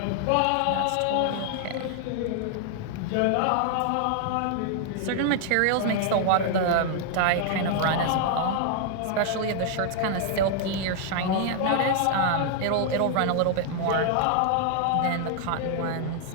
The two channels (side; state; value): both; different; correlation 0.00